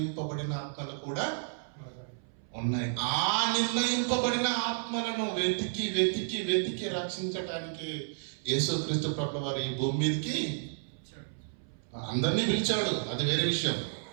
ఆత్మలు కూడా ఉన్నాయి. ఆ నిర్ణయింపబడిన ఆత్మలను వెతికి వెతికి వెతికి రక్షించటానికి యేసుక్రీస్తు ప్రభువు వారు ఈ భూమి మీదకి అందరినీ పిలిచాడు. అది వేరే విషయం,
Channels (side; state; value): left; silent; 57 dB below the other